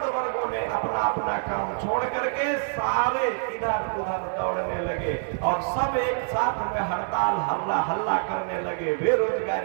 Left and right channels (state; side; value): silent; left; digital silence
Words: वर्गों ने अपना अपना काम छोड़ करके सारे इधर उधर दौड़ने लगे और सब एक साथ में हड़ताल हल्ला हल्ला करने लगे,